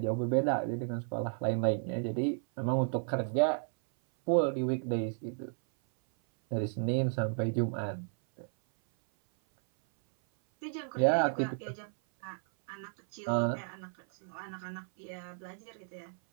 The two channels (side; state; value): left; silent; 56 dB below the other